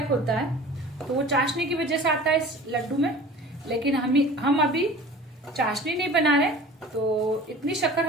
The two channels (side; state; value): both; normal; correlation 0.42